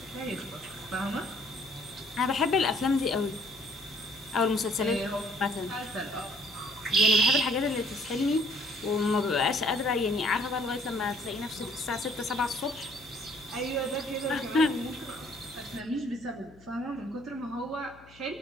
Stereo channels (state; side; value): noise; left; hum, 24 dB below the sound